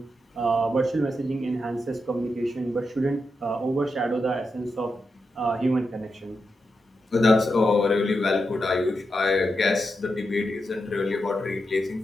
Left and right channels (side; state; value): both; normal; correlation 0.86